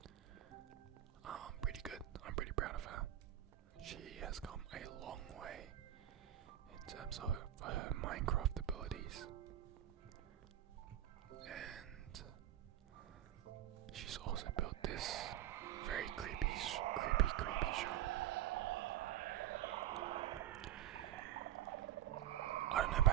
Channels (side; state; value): left; quieter; 12.4 dB